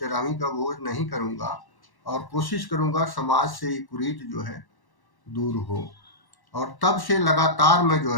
का भोज नहीं करूँगा और कोशिश करूँगा समाज से ये कुरीति जो है दूर हो। और तब से लगातार मैं जो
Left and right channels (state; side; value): late; right; 1.1 ms